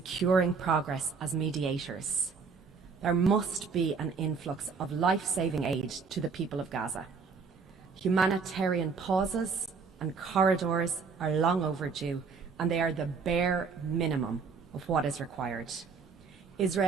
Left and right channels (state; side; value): quieter; left; 5.3 dB